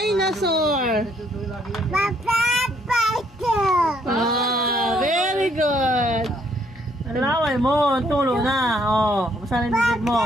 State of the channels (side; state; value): both; normal; correlation 0.68